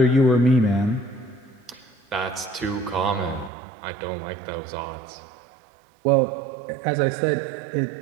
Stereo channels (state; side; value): drops out; left; at 3.5 s